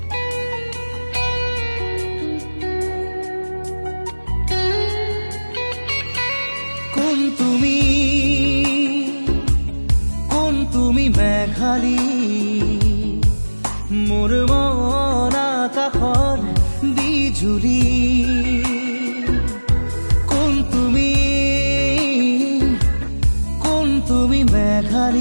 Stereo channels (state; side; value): inverted; both; correlation -1.00